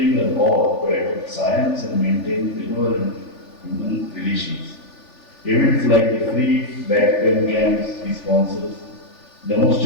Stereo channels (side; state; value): right; late; 3.4 ms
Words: us all to adopt science and maintain benevolent human relations. Events like the free back pain camps he sponsors